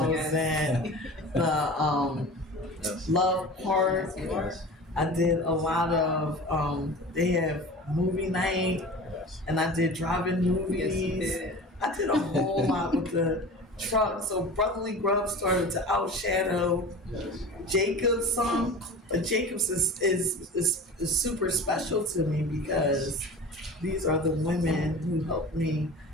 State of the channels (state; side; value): normal; both; correlation 0.36